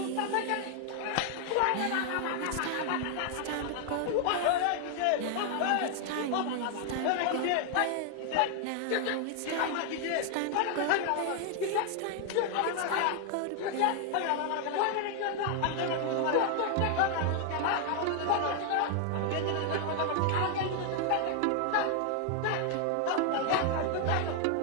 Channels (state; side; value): different; both; correlation 0.00